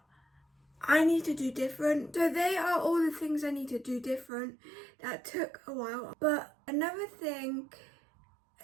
I need to do different. So they are all the things I need to do different that took a while. But another thing,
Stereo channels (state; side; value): drops out; left; at 4.3 s